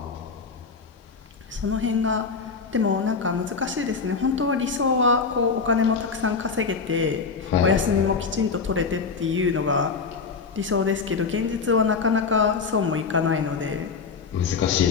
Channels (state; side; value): quieter; right; 5.1 dB